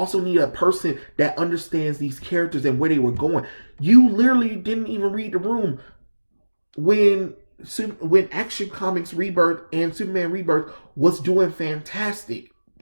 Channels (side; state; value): both; inverted; correlation -1.00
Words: need a person that understands these characters and where they were going. You literally didn't even read the room when Action Comics Rebirth and Superman Rebirth was doing fantastic.